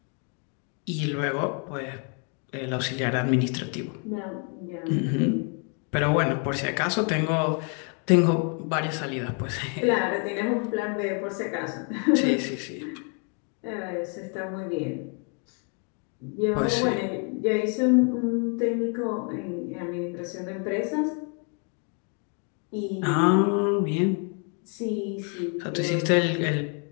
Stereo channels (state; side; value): quieter; right; 39.8 dB